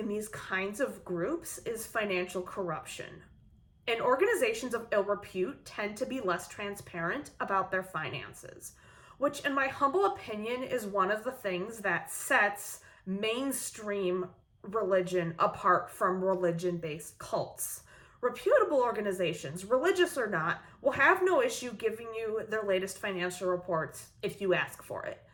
these kinds of groups is financial corruption. And organizations of ill repute tend to be less transparent about their finances, which in my humble opinion is one of the things that sets mainstream religion apart from religion-based cults. Reputable organizations, religious or not, will have no issue giving you their latest financial reports if you ask for it.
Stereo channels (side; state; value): both; identical; correlation 1.00